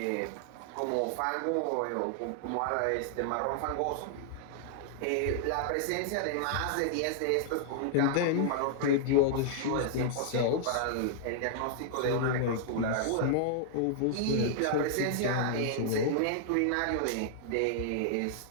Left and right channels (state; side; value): different; both; correlation 0.00